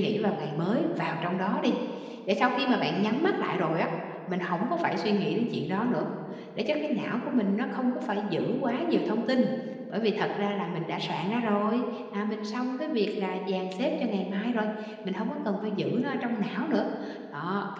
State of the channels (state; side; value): identical; both; correlation 1.00